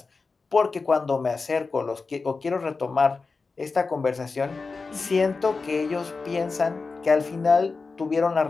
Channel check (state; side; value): quieter; right; 4.3 dB